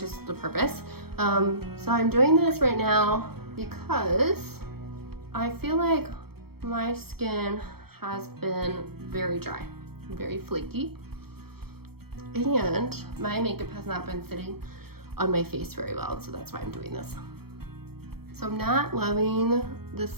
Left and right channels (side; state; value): left; late; 0.96 ms